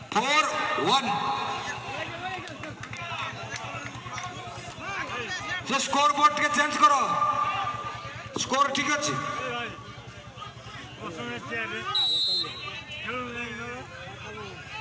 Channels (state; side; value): identical; both; correlation 1.00